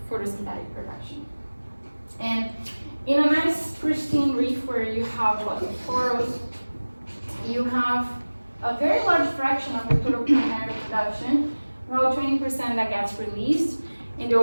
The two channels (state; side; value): inverted; both; correlation -1.00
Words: photosynthetic production. And in a nice pristine reef where you have lots of corals, you have a very large fraction of the total primary production, about 20% that gets released in the